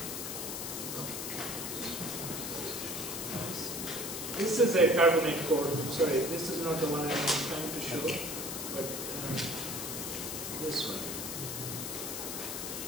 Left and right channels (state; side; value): noise; left; hiss, 5 dB below the sound